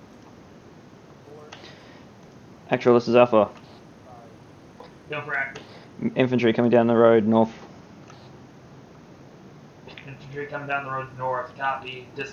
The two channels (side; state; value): both; identical; correlation 1.00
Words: Actual, this is Alpha. Go for active. Infantry coming down the road north. Infantry coming down the road north. Copy.